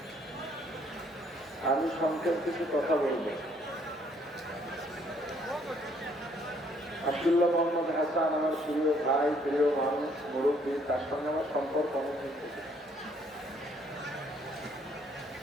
আমি সংক্ষেপ কিছু কথা বলবো। আব্দুল্লাহ মোহাম্মদ হাসান আমার প্রিয় ভাই, প্রিয় মানুষ, মুরব্বী, তার সঙ্গে আমার সম্পর্ক অনেক থেকে।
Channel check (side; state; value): both; normal; correlation 0.65